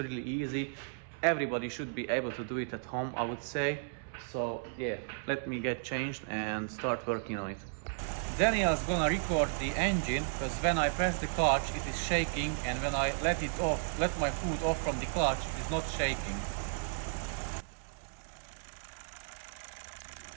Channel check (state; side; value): silent; left; digital silence